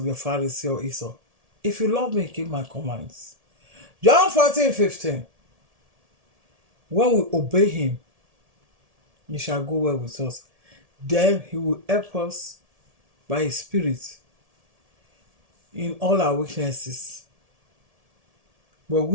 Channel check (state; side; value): late; left; 1.7 ms